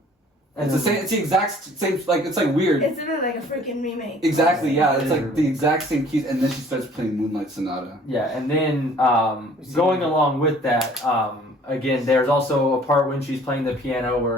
And It's the same. It's the exact same. Like it's like weird. It's really like a freaking remake. Exactly. Yeah. It's like the exact same keys, and then she starts playing Moonlight Sonata. Yeah, and then going along with that, again, there's also a part when she's playing the piano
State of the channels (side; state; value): both; normal; correlation 0.53